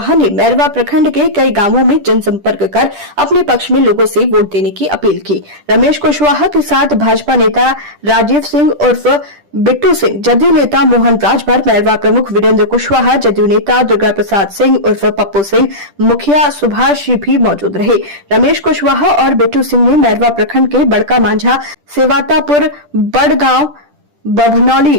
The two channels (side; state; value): left; late; 10 ms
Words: ने मैरवा प्रखंड के कई गांवों में जनसंपर्क कर अपने पक्ष में लोगों से वोट देने की अपील की। रमेश कुशवाहा के साथ भाजपा नेता राजीव सिंह उर्फ बिट्टू सिंह, जदयू नेता मोहन राजभर, मैरवा प्रमुख वीरेंद्र कुशवाहा, जदयू नेता दुर्गा प्रसाद सिंह उर्फ पप्पू सिंह, मुखिया सुभाष भी मौजूद रहे। रमेश कुशवाहा और बिट्टू सिंह ने मैरवा प्रखंड के बड़का मांझा, सेवातापुर, बड़गांव, बभनौली,